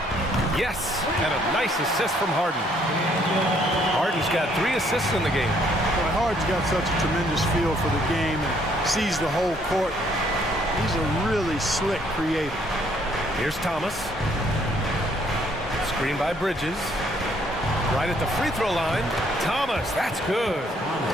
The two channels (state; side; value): normal; both; correlation 0.66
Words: Yes, and a nice assist from Harden. Harden's got 3 assists in the game. Boy, Harden's got such a tremendous feel for the game and sees the whole court. He's a really slick creator. Here's Thomas. Screen by Bridges. Right at the free throw line. Thomas, that's good.